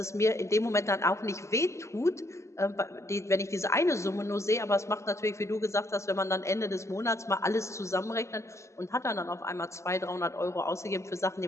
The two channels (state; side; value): late; right; 0.14 ms